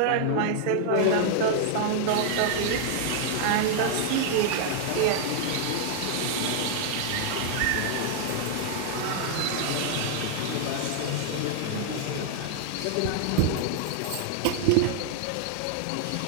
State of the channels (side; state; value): both; different; correlation 0.00